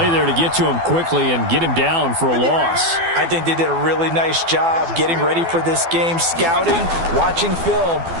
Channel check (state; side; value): late; left; 12 ms